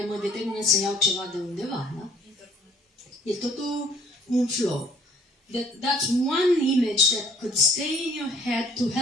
mă determină să iau ceva de undeva, da? E totul un flow. That's one image that could stay in your head to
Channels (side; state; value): both; normal; correlation 0.59